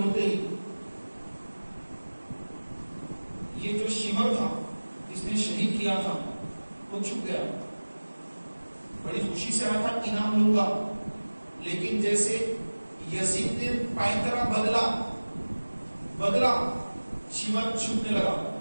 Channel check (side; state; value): both; inverted; correlation -1.00